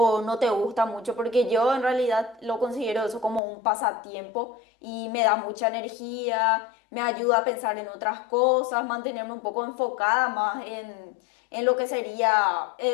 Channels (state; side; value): drops out; right; at 3.4 s